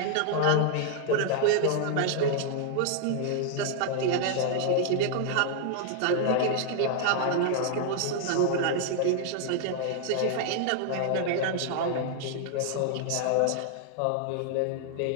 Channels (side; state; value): both; different; correlation 0.00